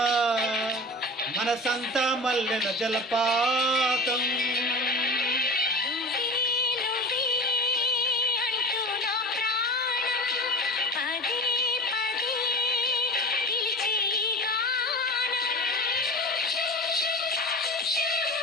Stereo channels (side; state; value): both; normal; correlation 0.33